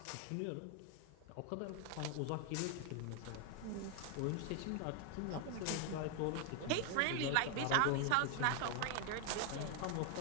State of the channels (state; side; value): different; both; correlation 0.00